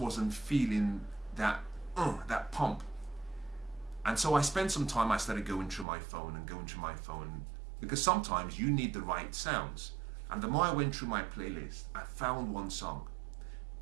feeling that pump. And so I spent some time, I started going through my phone, because sometimes you need the right sounds. And the more I went through my playlist, I found one song.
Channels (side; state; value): left; drops out; at 5.9 s